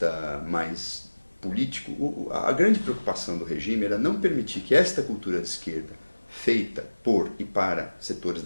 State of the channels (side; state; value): both; inverted; correlation -1.00